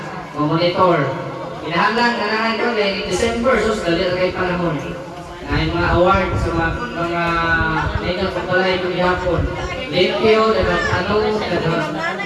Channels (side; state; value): both; identical; correlation 1.00